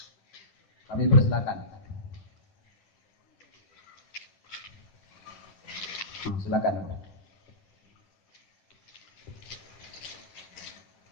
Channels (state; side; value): late; right; 9.8 ms